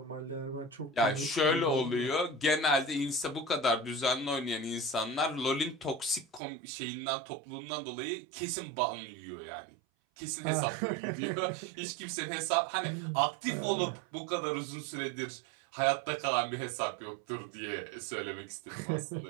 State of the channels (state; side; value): drops out; left; at 6.4 s